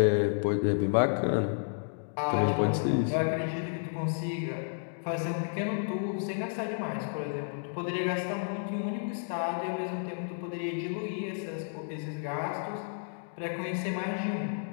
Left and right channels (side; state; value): right; silent; digital silence